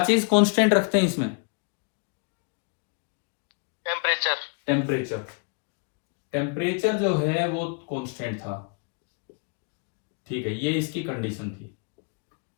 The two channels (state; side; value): quieter; right; 35.7 dB